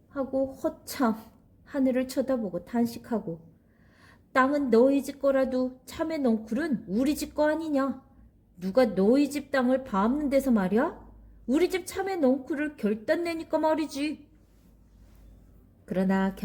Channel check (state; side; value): identical; both; correlation 1.00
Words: 하고 허참 하늘을 쳐다보고 탄식하고 땅은 너희 집 거라도 참외 넝쿨은 우리 집 거 아니냐? 누가 너희 집 땅을 밟는 데서 말이야? 우리 집 참외 넝쿨을 결단 내니까 말이지. 그러나